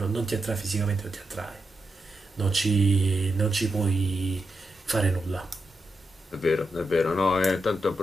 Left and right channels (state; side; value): normal; both; correlation 0.86